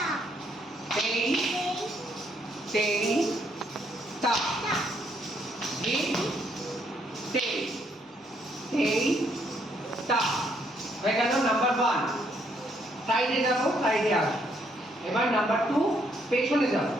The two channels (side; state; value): both; normal; correlation 0.72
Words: Steady. Steady. Stop. Hit. Steady. Steady. Stop. হয়ে গেল number 1 সাইডে যাবো সাইডে আসো এবার নাম্বার 2 পেছনে যাবো